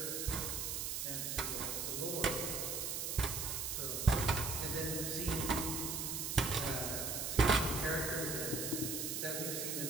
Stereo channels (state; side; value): noise; right; hiss, 2 dB below the sound